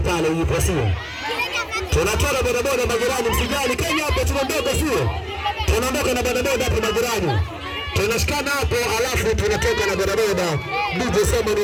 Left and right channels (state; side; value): identical; both; correlation 1.00